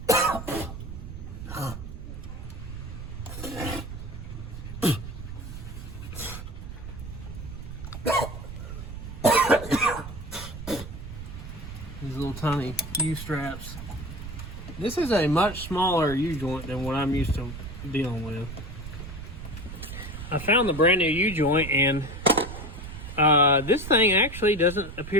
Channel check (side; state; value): right; noise; rumble, 10 dB below the sound